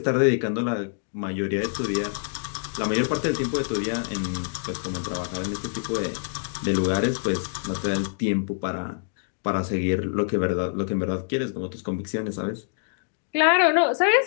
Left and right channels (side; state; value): right; silent; digital silence